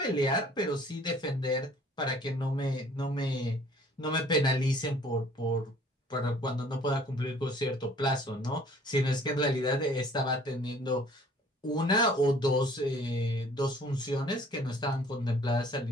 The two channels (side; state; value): both; normal; correlation 0.54